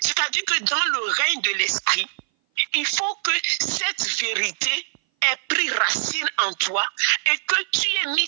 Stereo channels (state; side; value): silent; left; 58 dB below the other